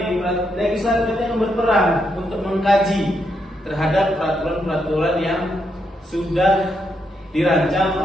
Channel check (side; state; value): both; normal; correlation 0.80